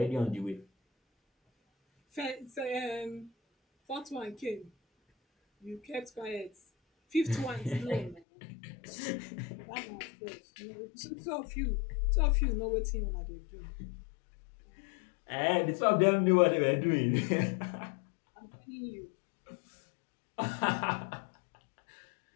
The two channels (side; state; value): right; drops out; at 8.2 s